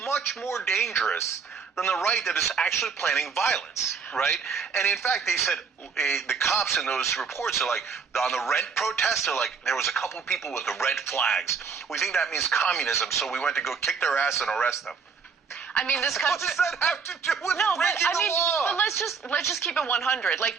much more dangerous than the right that is actually planning violence, right? And in fact, they said, the cops in those reports are like, on the rent protest, they're like, there was a couple of people with the red flags. We think that means communism, so we went to go kick their ass and arrest them. I mean, this country. What does that have to do with breaking the law? But let's just keep it 100. Like,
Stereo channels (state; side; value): quieter; left; 5.7 dB